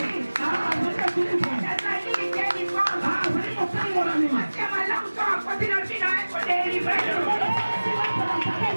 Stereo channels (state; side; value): inverted; both; correlation -1.00